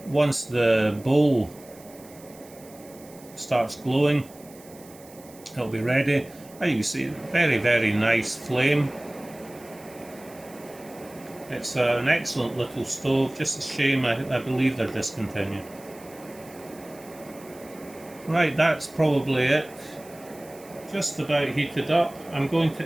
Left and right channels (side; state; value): right; noise; hiss, 22 dB below the sound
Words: Once the bowl starts glowing, it'll be ready. As you can see, very nice flame. It's an excellent little stove, just a shame I believe they're discontinued. Right, that's probably it. Just about heated up. I'm going to